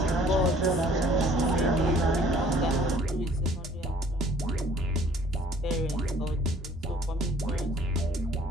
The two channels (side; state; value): both; normal; correlation 0.55